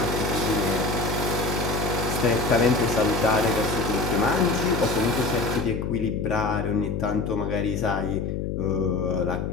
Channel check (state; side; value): noise; left; hum, 3 dB below the sound